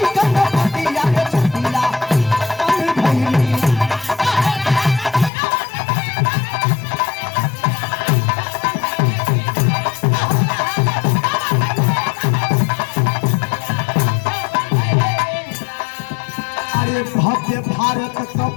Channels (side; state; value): right; drops out; at 5.3 s